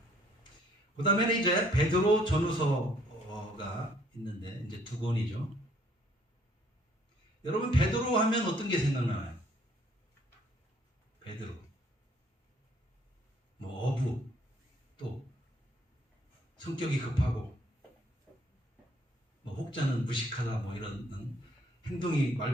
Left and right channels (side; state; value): both; normal; correlation 0.63